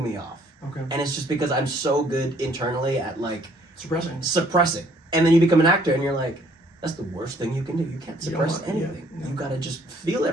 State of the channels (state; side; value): normal; both; correlation 0.62